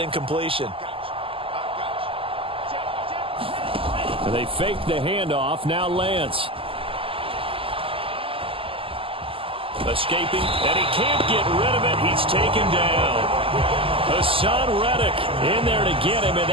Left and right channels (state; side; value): late; left; 0.26 ms